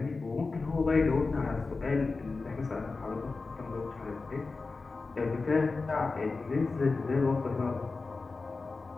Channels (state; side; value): quieter; right; 4.0 dB